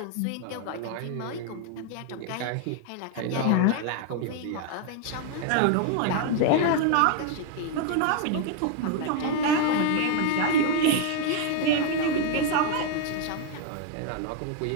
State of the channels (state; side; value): different; both; correlation 0.00